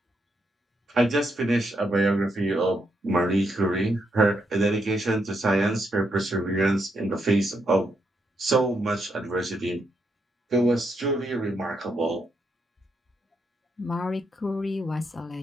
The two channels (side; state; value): both; normal; correlation 0.79